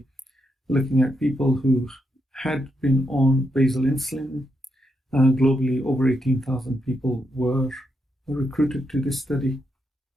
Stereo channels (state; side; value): normal; both; correlation 0.81